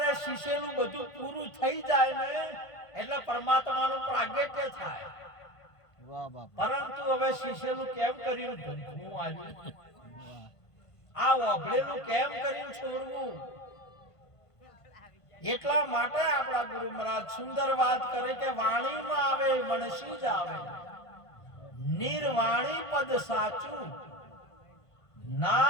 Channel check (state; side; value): late; right; 1.5 ms